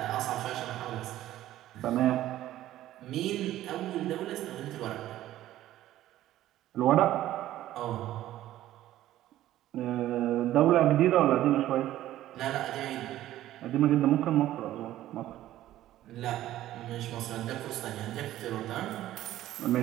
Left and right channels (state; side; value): quieter; left; 13.9 dB